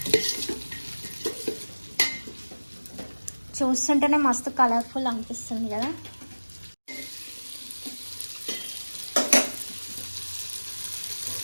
చూస్తుంటేనే మస్తు కలర్ఫుల్ అనిపిస్తుంది కదా.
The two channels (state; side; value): inverted; both; correlation -1.00